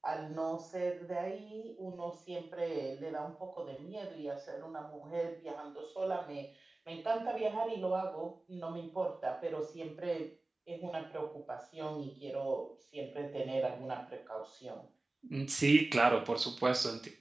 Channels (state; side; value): quieter; left; 3.0 dB